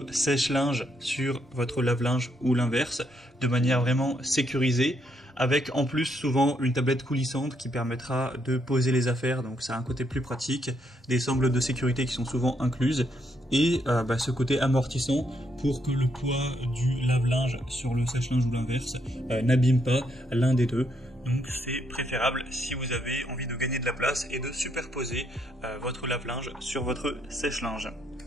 sèche-linge sur votre lave-linge ou l'inverse de manière vraiment sécurisée, avec en plus souvent une tablette coulissante qui permettra de poser les affaires, donc ça a un côté plus pratique, des sangles de sécurité qui sont souvent incluses, et ce côté amortissant pour que le poids du lave-linge sur le sèche-linge ou l'inverse n'abîme pas l'un des deux. Donc c'est préférable si vous avez envie de gagner de la place et de superposer votre lave-linge sur votre sèche-linge.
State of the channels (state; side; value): normal; both; correlation 0.75